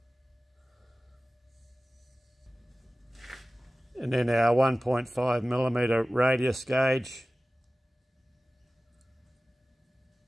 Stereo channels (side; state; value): both; normal; correlation 0.97